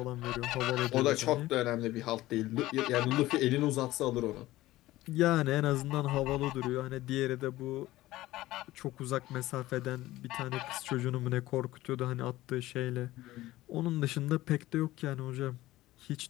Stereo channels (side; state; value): right; quieter; 16.8 dB